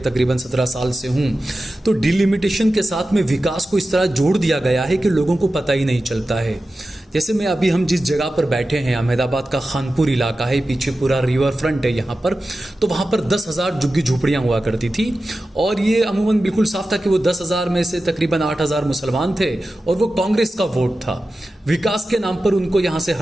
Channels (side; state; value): both; normal; correlation 0.94